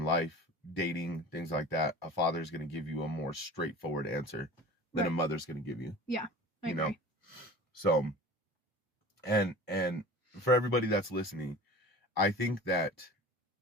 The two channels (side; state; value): both; normal; correlation 0.39